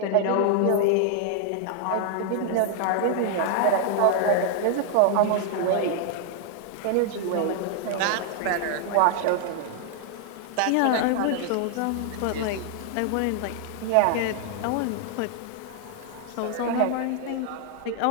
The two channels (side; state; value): both; different; correlation 0.00